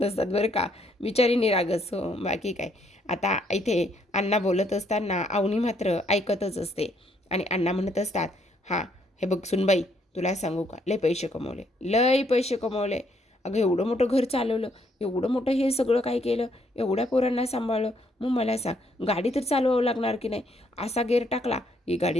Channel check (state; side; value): normal; both; correlation 0.70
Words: नसतात बरं का, बिचारी निरागस हो, बाकी काय. आता इथे अण्णा बोलत असताना अवनी मात्र ऐकतच असते आणि अण्णा म्हणत असतात, हां हे बघ सुनबाई, तुला सांगू का, लय पैसे कमवले, लय पैसे कमवले. अगं एवढं मोठं घर चालवलं, एवढं मोठं हे सगळं काय केलं, एवढ्या पोरांना सांभाळलं. मग मला सांग, गाडी तर चालवावं लागणार की नाही? असा गेअर टाकला की